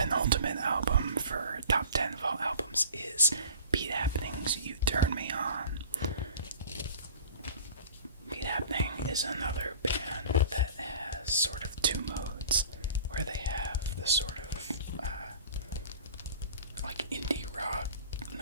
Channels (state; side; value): inverted; both; correlation -0.44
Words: album for top 10 fall albums is Beat Happening's You Turn Me On. Beat Happening is another band that has sort of two modes, where they have the sort of like indie rock